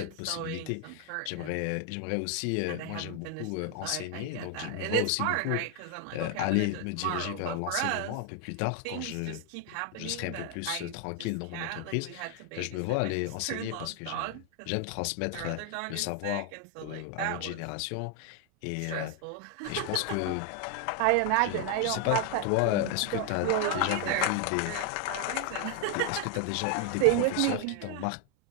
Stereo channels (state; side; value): different; both; correlation 0.00